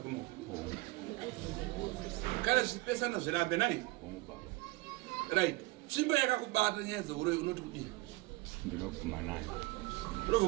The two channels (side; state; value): left; quieter; 20.6 dB